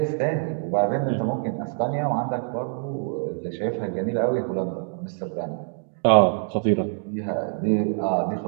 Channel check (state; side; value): silent; left; digital silence